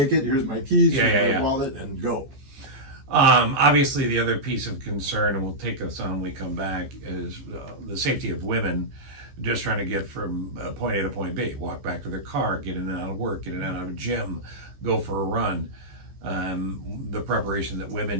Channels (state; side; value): late; left; 15 ms